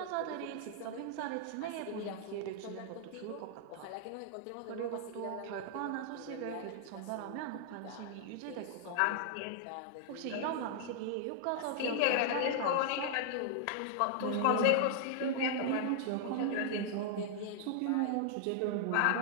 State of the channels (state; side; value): different; both; correlation -0.01